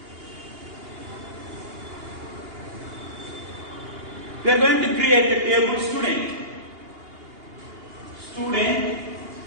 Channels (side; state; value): left; late; 2.8 ms